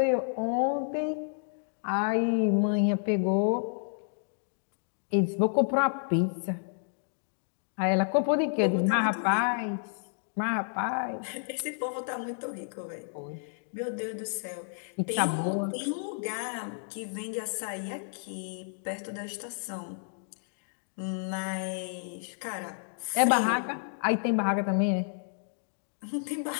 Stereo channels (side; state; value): right; silent; digital silence